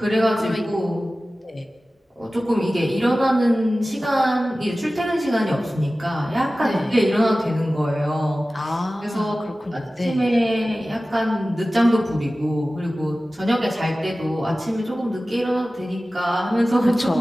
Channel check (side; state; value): both; normal; correlation 0.96